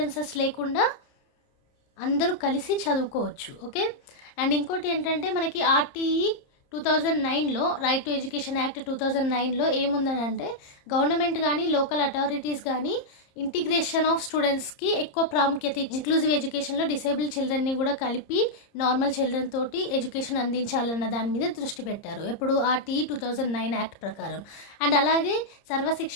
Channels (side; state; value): right; late; 30 ms